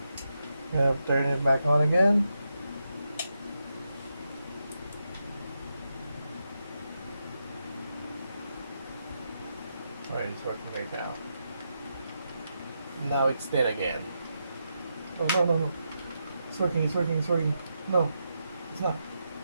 I'll turn it back on again. Alright, it's working right now. Now it's dead again. Oh, no, no, no. It's working, it's working, it's working. No, it's not.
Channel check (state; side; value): inverted; both; correlation -0.85